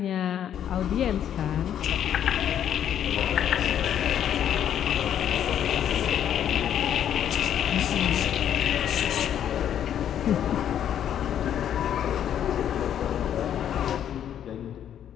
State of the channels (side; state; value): right; quieter; 9.9 dB